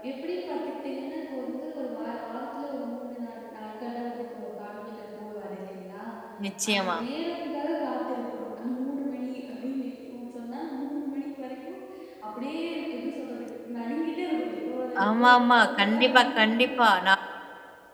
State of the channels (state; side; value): identical; both; correlation 1.00